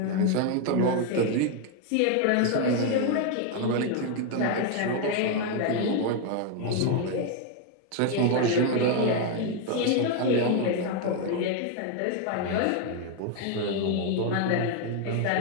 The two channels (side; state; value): both; different; correlation 0.01